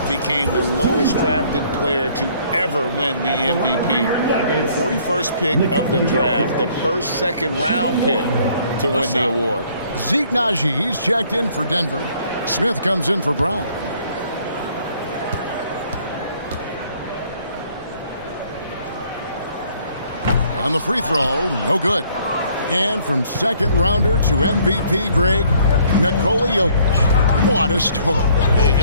became the lowest drafted player to ever win the MVP. The 41st pick of the draft, the first second-round pick to win the award. Zeke Naji, he's checked in for Denver. Smith comes in for Brown. On the free throw, no good. And from second rounder to MVP, Greg, Nikola Jokic. What a story.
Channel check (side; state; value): both; inverted; correlation -0.61